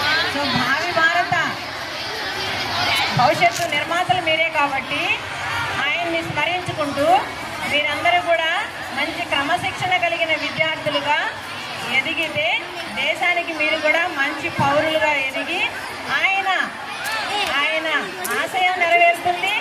సో భావి భారత భవిష్యత్తు నిర్మాతలు మీరే కాబట్టి ఆయన్ని స్మరించుకుంటూ మీరందరూ కూడా మంచి క్రమశిక్షణ కలిగిన విద్యార్థులుగా ఎదిగితే దేశానికి మీరు కూడా మంచి పౌరులుగా ఎదిగి ఆయన ఆశయం నెరవేరుతుంది.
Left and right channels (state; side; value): identical; both; correlation 1.00